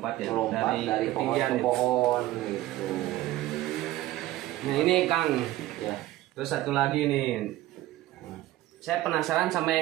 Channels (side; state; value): left; quieter; 15.8 dB